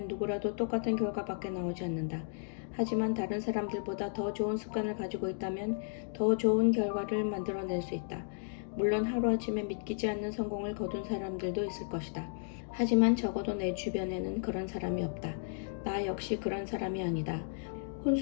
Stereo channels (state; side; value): silent; right; digital silence